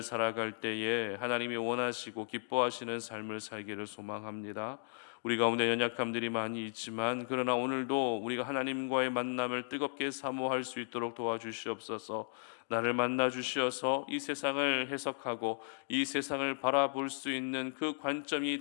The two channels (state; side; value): silent; right; digital silence